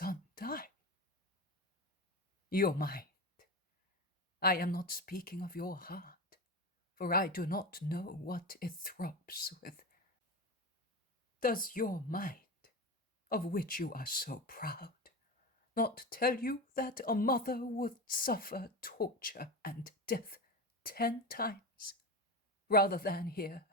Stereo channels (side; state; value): both; normal; correlation 0.23